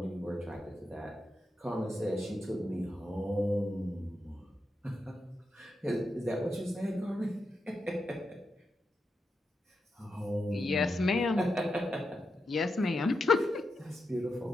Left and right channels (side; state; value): both; normal; correlation 0.87